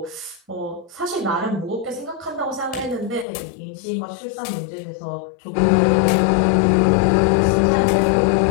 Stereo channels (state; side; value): drops out; right; at 3.2 s